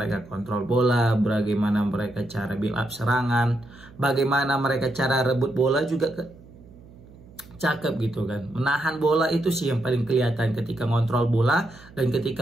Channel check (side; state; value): right; noise; hum, 22 dB below the sound